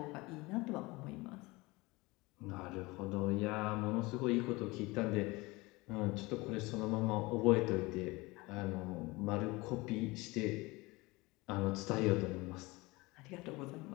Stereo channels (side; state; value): right; quieter; 22.8 dB